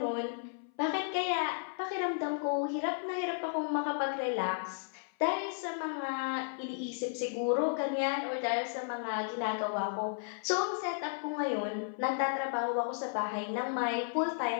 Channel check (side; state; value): right; silent; 55 dB below the other